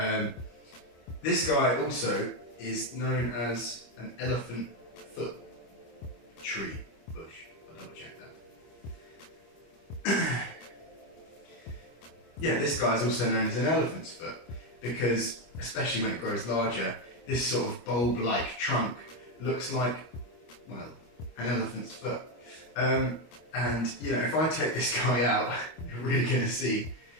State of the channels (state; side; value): late; right; 25 ms